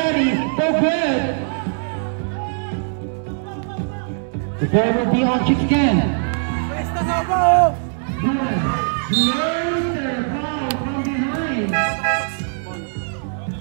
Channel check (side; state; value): left; silent; 65 dB below the other